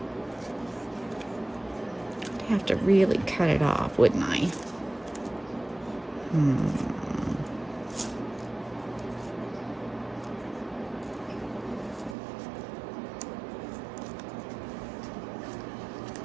I'd have to really cut it off, wouldn't I?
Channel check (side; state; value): left; drops out; at 12.2 s